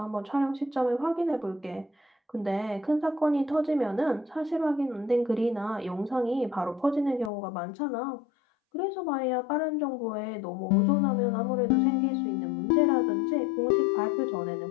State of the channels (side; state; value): right; drops out; at 7.3 s